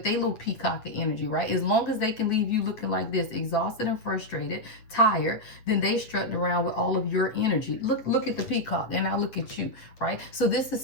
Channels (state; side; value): late; right; 8.5 ms